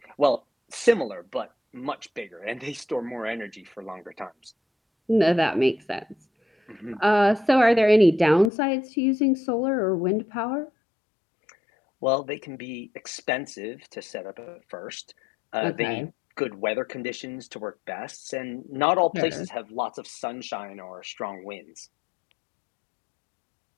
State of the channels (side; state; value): right; drops out; at 8.5 s